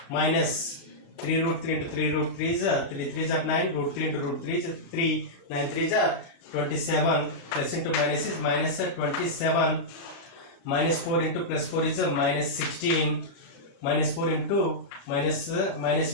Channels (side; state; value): right; late; 36 ms